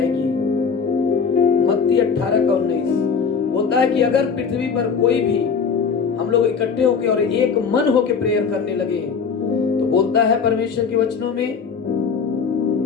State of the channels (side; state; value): right; quieter; 5.9 dB